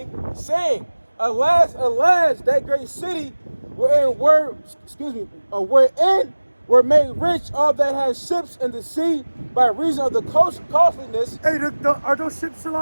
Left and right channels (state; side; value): inverted; both; correlation -1.00